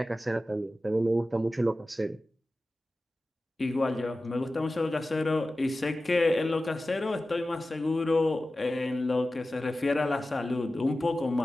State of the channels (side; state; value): both; normal; correlation 0.95